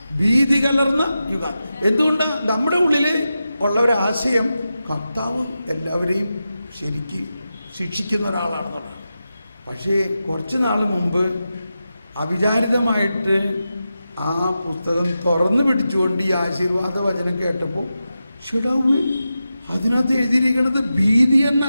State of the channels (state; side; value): inverted; both; correlation -0.91